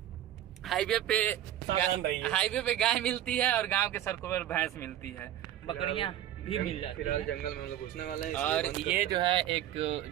हाईवे पे गाय मिलती है और गांव के सड़कों पर भैंस मिलती है, बकरियां भी मिल जाती है। फिलहाल जंगल में हम लोग घुसने वाले हैं। और ये जो है एक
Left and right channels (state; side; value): quieter; left; 12.1 dB